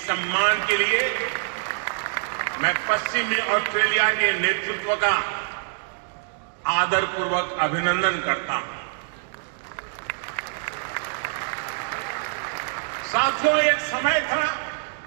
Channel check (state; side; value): silent; left; digital silence